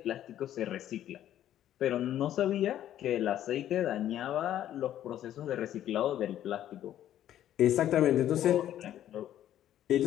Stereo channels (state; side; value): quieter; right; 11.7 dB